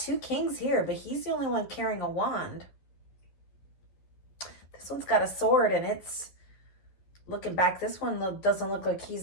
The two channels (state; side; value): late; right; 11 ms